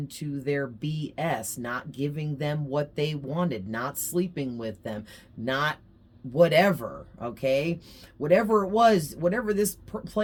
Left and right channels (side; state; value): both; identical; correlation 1.00